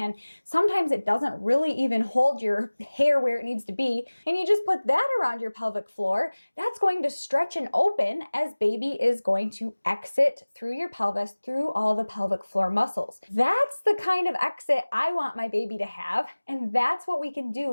sometimes it doesn't really even hold your hair where it needs to be, and you just put that around your pelvic floor, that's going to stretch and open as baby is going to exit through your pelvis, through all the pelvic floor muscles. That's the kind of exit I want my baby to have, and that's what we can do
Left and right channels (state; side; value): inverted; both; correlation -1.00